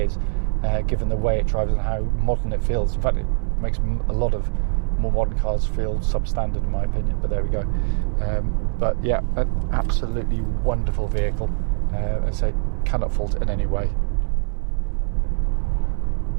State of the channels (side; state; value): left; silent; digital silence